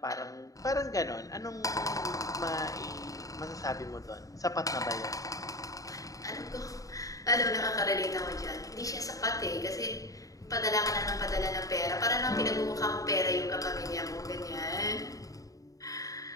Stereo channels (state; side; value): late; right; 0.17 ms